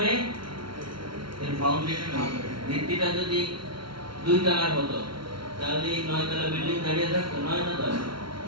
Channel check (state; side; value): late; left; 0.74 ms